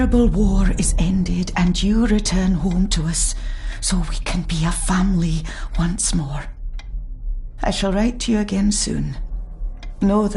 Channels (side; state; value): both; identical; correlation 1.00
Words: war is ended and you return home to us so we can be a family once more. I shall write to you again soon. Know